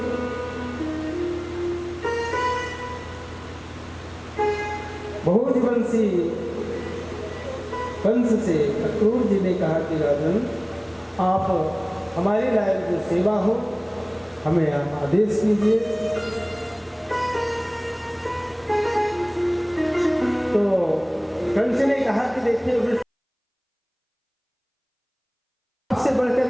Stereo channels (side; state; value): both; identical; correlation 1.00